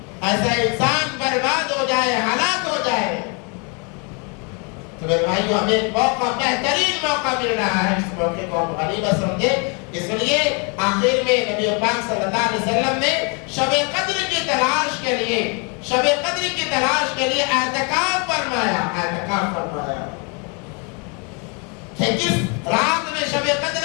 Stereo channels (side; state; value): right; quieter; 34.0 dB